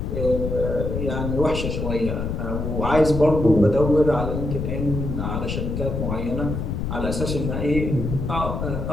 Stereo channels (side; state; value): left; noise; rumble, 3 dB below the sound